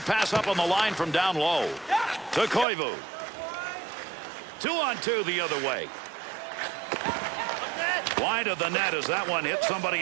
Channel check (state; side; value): drops out; left; at 2.7 s